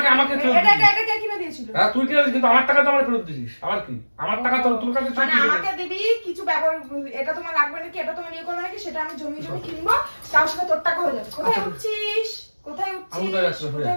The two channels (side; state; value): both; inverted; correlation -1.00